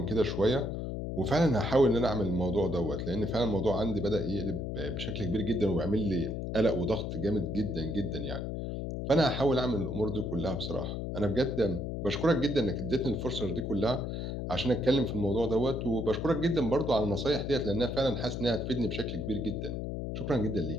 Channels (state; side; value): noise; left; hum, 4 dB below the sound